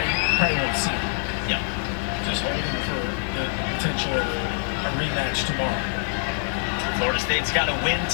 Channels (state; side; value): silent; right; 62 dB below the other